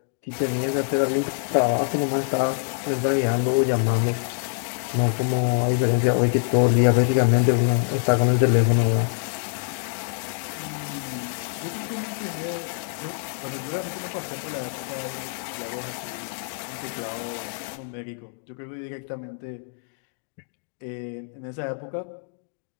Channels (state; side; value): silent; right; digital silence